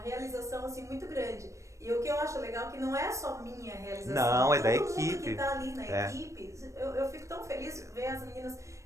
assim, muito grande. E o que eu acho legal é que não é só minha realização. Não, é da Todo mundo equipe. que tá ali na É. equipe, eu fico tão feliz de ver as meninas.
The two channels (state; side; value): late; left; 0.15 ms